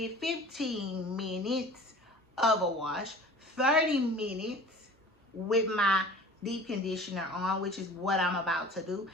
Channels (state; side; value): normal; both; correlation 0.43